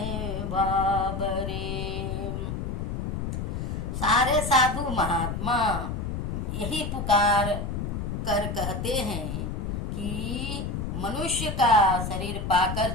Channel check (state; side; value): noise; left; rumble, 3 dB below the sound